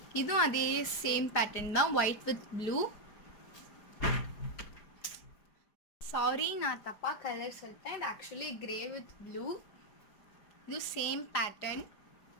இதுவும் அதே same pattern தான் white with blue. Sorry நான் தப்பா கலர் சொல்லிட்டேன். இது actually grey with blue. இது same pattern.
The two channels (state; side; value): late; right; 4.8 ms